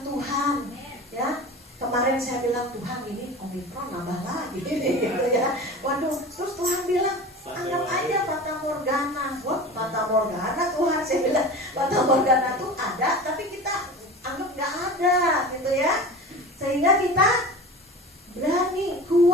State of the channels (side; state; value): both; normal; correlation 0.34